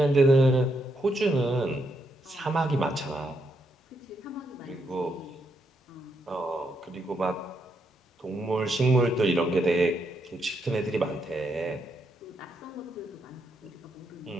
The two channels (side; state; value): both; normal; correlation 0.78